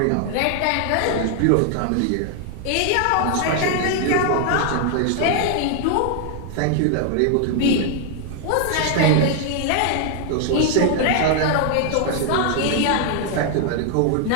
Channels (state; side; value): different; both; correlation 0.00